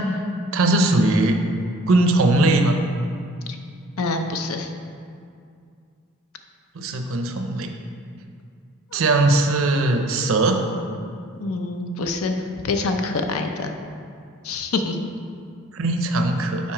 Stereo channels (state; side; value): normal; both; correlation 0.52